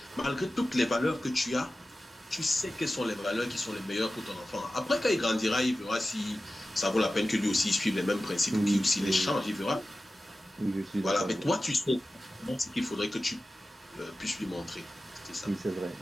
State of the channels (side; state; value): both; normal; correlation 0.95